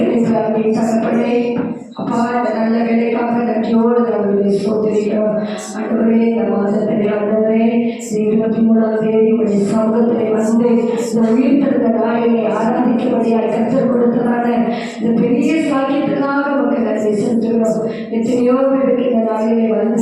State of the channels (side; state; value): both; identical; correlation 1.00